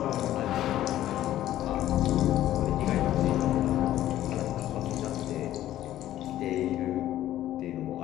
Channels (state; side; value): quieter; right; 13.3 dB